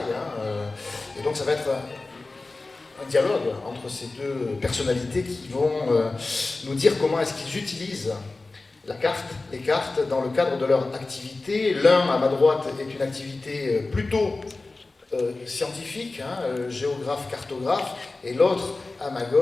Et donc, ça va être un dialogue entre ces deux personnalités qui vont nous dire comment est-ce qu'ils utilisent les cartes dans le cadre de leur activité. L'un, à ma droite, est une activité plutôt scientifique, géographe, cartographe, et l'autre, à ma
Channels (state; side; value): quieter; right; 3.4 dB